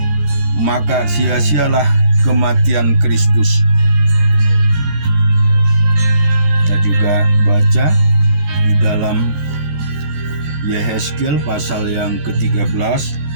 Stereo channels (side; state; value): left; late; 14 ms